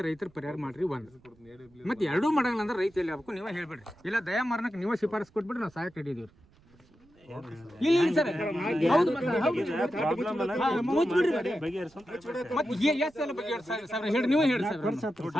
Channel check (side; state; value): right; noise; rumble, 29 dB below the sound